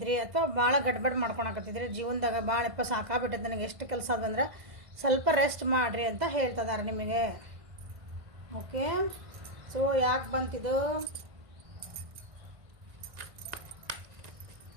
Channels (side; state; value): left; late; 1.5 ms